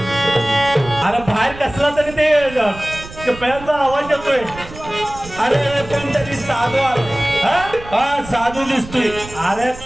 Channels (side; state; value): right; noise; rumble, 15 dB below the sound